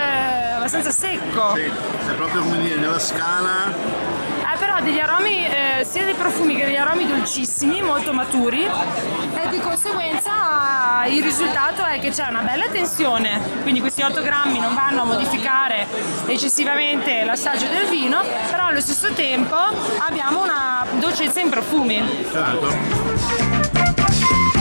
abbastanza secco. Sì, è proprio come dire, nella scala. Però degli aromi, sia dei profumi che degli aromi dolcissimi, molto maturi, e di conseguenza il risultato è che c'è una bella tensione, quindi questi 8 grammi non vanno a modificare eccessivamente l'assaggio del vino, però allo stesso tempo abbiamo una dolcezza in profumi. Certo.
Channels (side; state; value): both; inverted; correlation -1.00